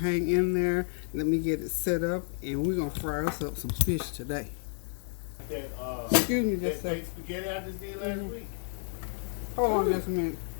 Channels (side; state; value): right; silent; 57 dB below the other